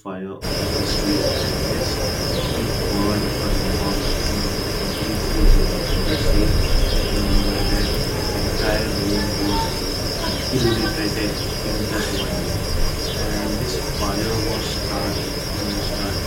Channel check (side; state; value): both; identical; correlation 1.00